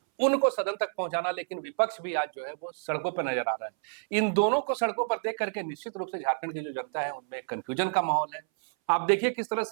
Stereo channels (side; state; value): left; silent; 58 dB below the other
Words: उनको सदन तक पहुंचाना, लेकिन विपक्ष भी आज जो है वो सड़कों पर नजर आ रहा है। इन दोनों को सड़कों पर देख करके निश्चित रूप से झारखंड की जो जनता है उनमें कंफ्यूजन का माहौल है। आप देखिए किस तरह